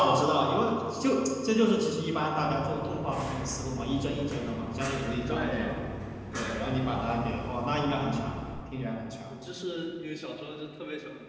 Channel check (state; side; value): identical; both; correlation 1.00